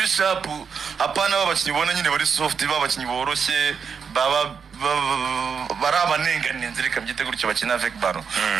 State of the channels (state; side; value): quieter; left; 6.4 dB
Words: sharp apana babakinyi ubona nyine bari soft babakinyi boroshye baba barabanengane nzirika mbyite gutyo bakina avec ballon